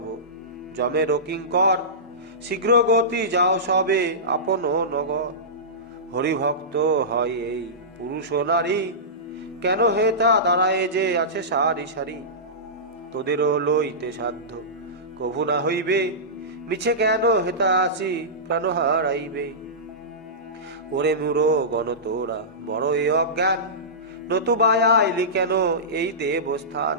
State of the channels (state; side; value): normal; both; correlation -0.18